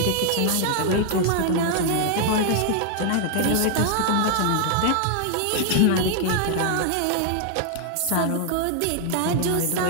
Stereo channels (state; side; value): different; both; correlation 0.00